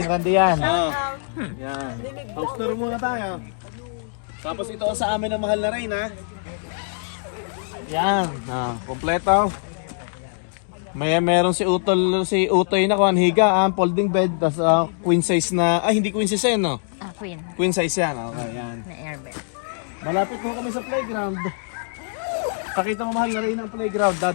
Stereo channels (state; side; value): silent; right; digital silence